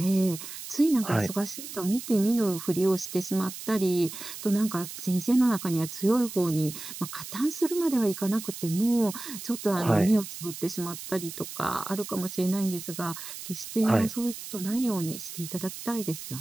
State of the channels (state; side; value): noise; right; hiss, 10 dB below the sound